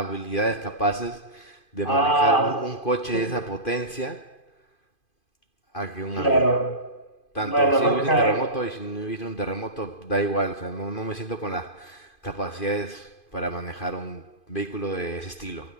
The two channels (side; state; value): right; late; 2.5 ms